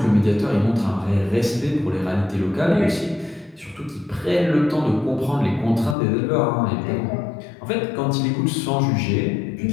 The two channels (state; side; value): drops out; right; at 6.0 s